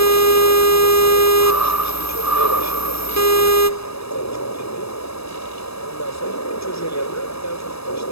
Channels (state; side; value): late; right; 0.78 ms